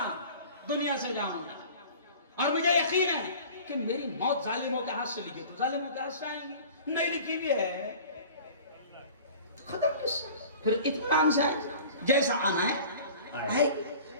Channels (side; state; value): both; inverted; correlation -0.43